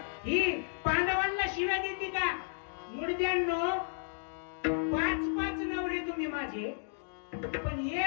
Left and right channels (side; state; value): right; silent; digital silence